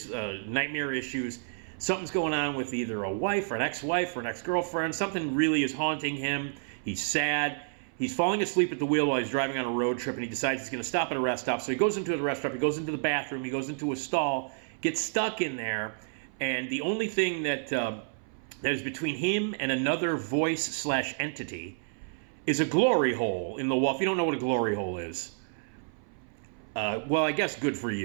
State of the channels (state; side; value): silent; left; 58 dB below the other